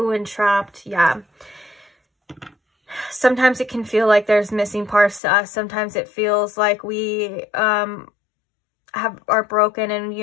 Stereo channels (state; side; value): drops out; right; at 5.2 s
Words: entrapped. Yeah. Sometimes it can feel like there's missing parts to us. Sometimes it feels like we are broken and,